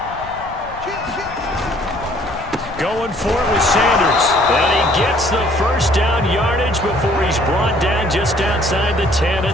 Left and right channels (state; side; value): noise; left; rumble, 17 dB below the sound